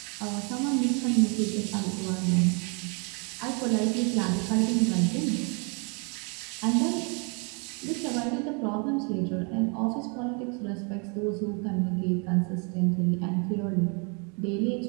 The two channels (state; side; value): quieter; left; 34.9 dB